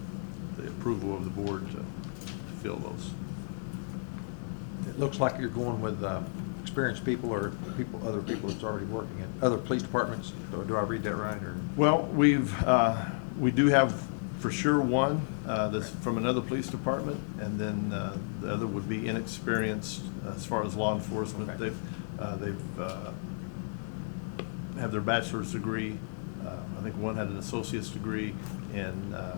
the approval of the board to fill those. It looks like you're going with experienced people or other people that's already working at other police departments. Do I read that right, or? Well, we do have for sure one that's from another police department, and then the other would be inexperienced as far as law enforcement. Okay. They've have their bachelor's degree. I think one had an associate's degree in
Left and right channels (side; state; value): right; silent; digital silence